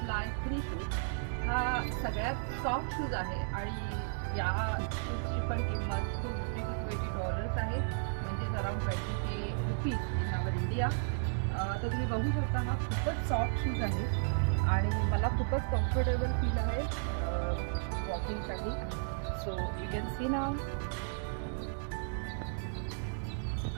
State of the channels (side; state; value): left; silent; digital silence